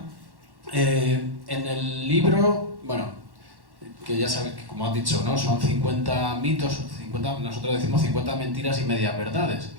En el libro, bueno, que ya sabes que, como has dicho, ¿no? Son 50 mitos, nosotros decimos 50 mentiras y medias verdades.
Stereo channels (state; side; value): late; left; 1.1 ms